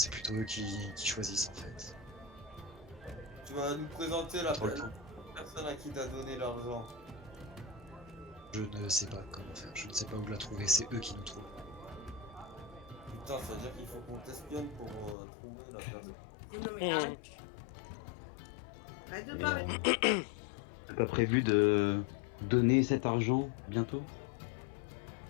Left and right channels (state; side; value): drops out; right; at 15.2 s